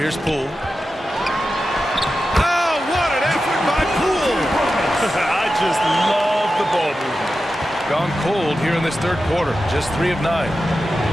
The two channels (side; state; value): both; normal; correlation 0.92